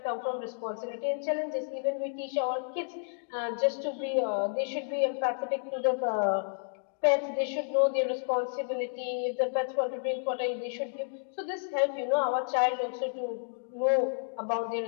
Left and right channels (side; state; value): right; silent; digital silence